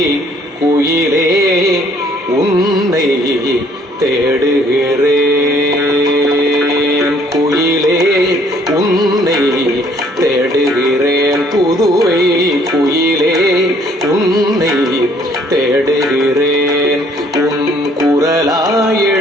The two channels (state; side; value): normal; both; correlation 0.62